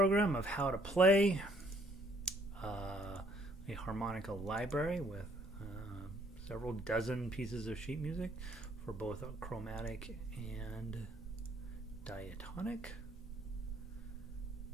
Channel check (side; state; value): both; normal; correlation 0.64